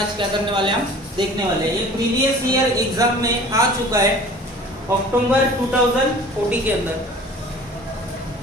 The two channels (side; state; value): both; normal; correlation 0.45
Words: क्या करने वाले हम देखने वाले हैं। ये प्रीवियस ईयर एग्जाम में आ चुका है अक्टूबर 2040 के अंदर।